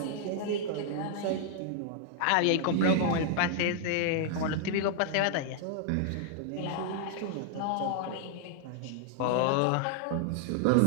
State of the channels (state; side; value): different; both; correlation -0.01